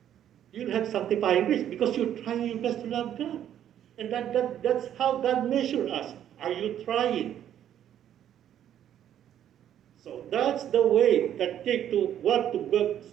you'll have sanctifying grace because you're trying your best to love God. And that's how God measures us. Are you trying? So that's the way that to want to go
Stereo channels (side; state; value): left; quieter; 10.5 dB